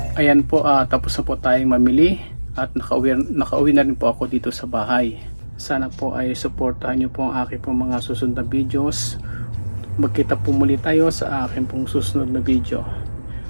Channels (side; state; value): both; inverted; correlation -1.00